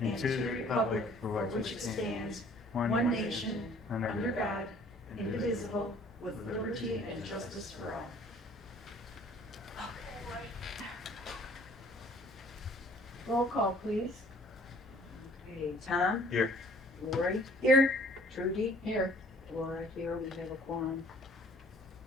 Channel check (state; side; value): normal; both; correlation 0.55